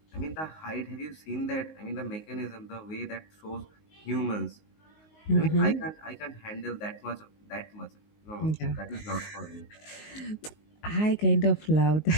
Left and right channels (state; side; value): late; right; 19 ms